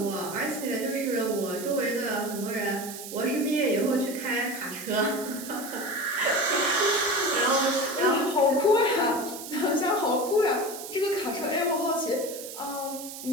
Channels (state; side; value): noise; right; hiss, 11 dB below the sound